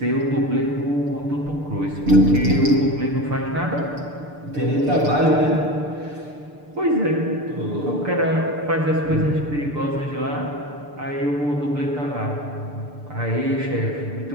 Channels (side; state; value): left; late; 6.8 ms